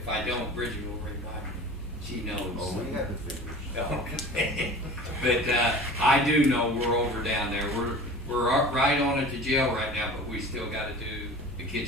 I don't, Bridget will remind me. She knows. Oh, we have the figures. Okay. But I do know we're over down there. We're right on at the jail right now, but we still gotta do the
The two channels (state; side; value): normal; both; correlation 0.39